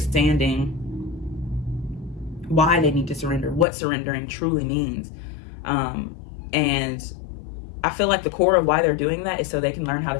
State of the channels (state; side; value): drops out; right; at 3.7 s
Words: why they need to surrender, what surrendering truly means. And I feel like the core of why they're doing that is so they can learn how to